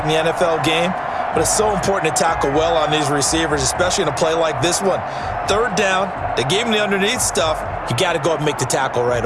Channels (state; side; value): identical; both; correlation 1.00